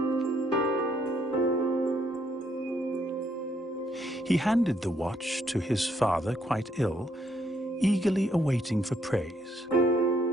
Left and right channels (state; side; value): normal; both; correlation 0.71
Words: He handed the watch to his father, quite ill, eagerly awaiting for praise.